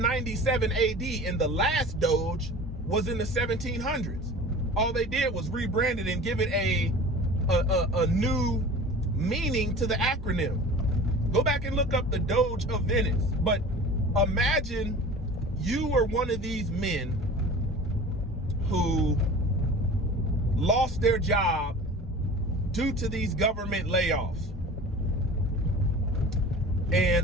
AD, and the last Doge was in the 1700s. All they did was rebrand it and give it a new meaning to the acronym. Go back and look up the Doge of Venice. But imagine you were one of these men who lost their job due to these government layoffs.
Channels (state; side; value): normal; both; correlation 0.39